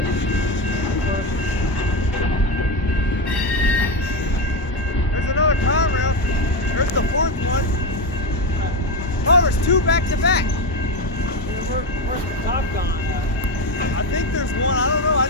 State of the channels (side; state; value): both; normal; correlation 0.14